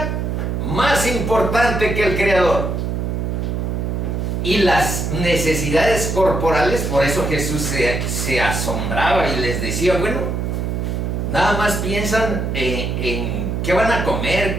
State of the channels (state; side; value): noise; right; hum, 1 dB below the sound